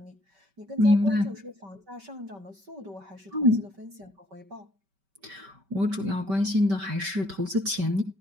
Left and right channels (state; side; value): late; left; 5.2 ms